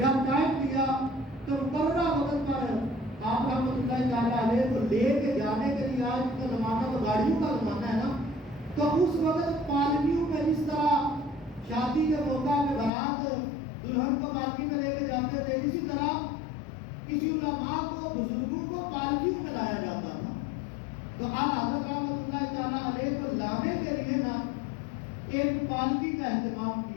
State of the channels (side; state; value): right; drops out; at 12.9 s